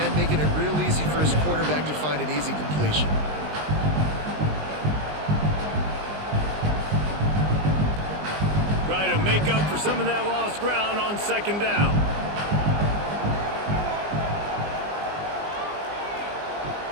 making it real easy for his quarterback to find an easy completion. Try to make up for some of that lost ground on 2nd down.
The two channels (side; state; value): left; late; 20 ms